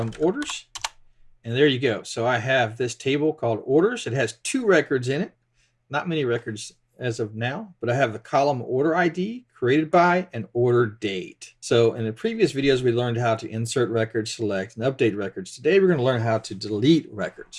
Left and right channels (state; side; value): identical; both; correlation 1.00